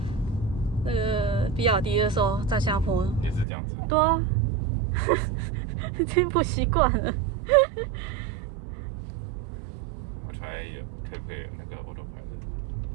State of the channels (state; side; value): drops out; left; at 3.5 s